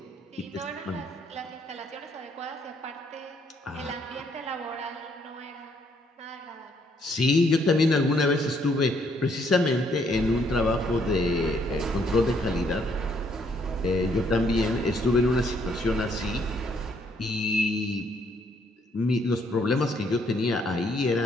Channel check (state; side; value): normal; both; correlation 0.69